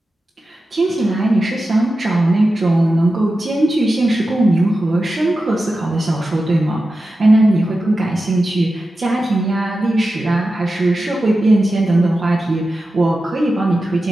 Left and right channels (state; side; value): normal; both; correlation 0.92